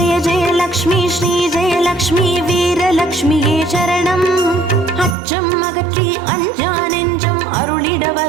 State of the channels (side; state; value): left; drops out; at 5.2 s